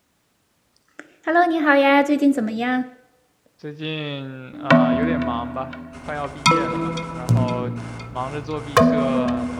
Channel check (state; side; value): identical; both; correlation 1.00